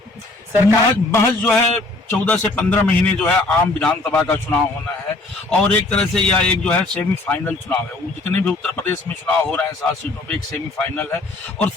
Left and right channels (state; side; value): quieter; right; 3.0 dB